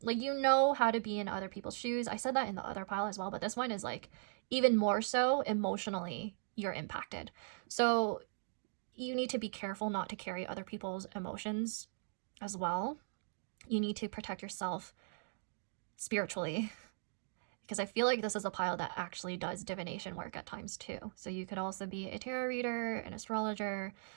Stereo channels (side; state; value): left; silent; digital silence